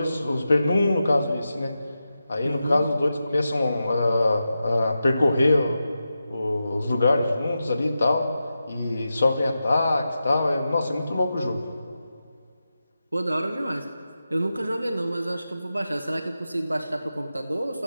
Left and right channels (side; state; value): both; inverted; correlation -0.91